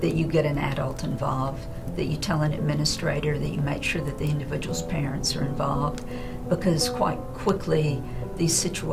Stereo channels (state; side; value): identical; both; correlation 1.00